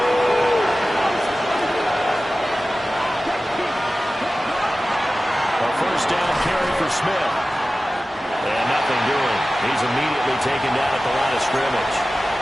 A first down carry for Smith. And nothing doing. He's immediately taken down at the line of scrimmage.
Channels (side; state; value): both; normal; correlation 0.96